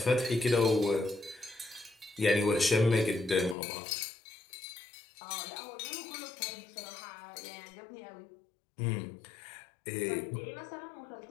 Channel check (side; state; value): right; drops out; at 3.6 s